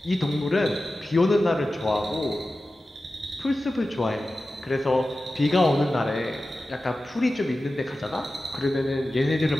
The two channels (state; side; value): normal; both; correlation 0.94